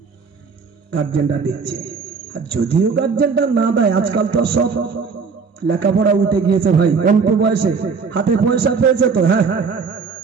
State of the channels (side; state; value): left; quieter; 5.3 dB